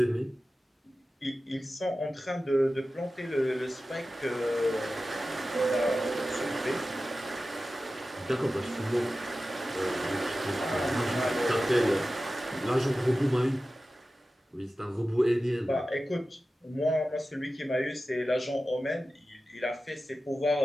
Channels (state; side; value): normal; both; correlation 0.94